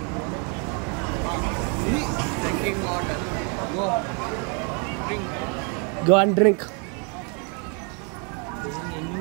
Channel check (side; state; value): left; quieter; 36.5 dB